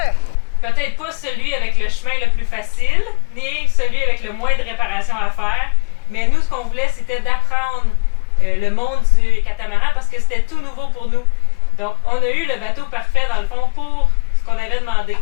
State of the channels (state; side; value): quieter; right; 33.0 dB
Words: Peut-être pas celui avec le chemin le plus facile, ni celui avec le moins de réparations à faire, mais nous, ce qu'on voulait, c'était d'apprendre le monde du catamaran parce que c'était tout nouveau pour nous. Donc, on a eu le bateau parfait, dans le fond, pour ce qu'on avait demandé.